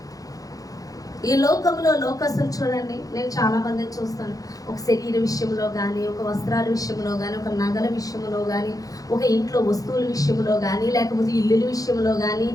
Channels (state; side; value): late; right; 0.17 ms